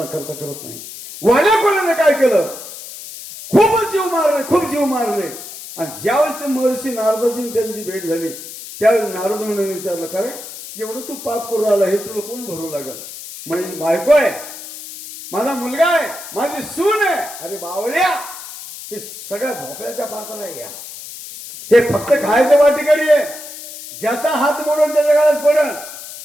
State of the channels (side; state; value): left; noise; hiss, 12 dB below the sound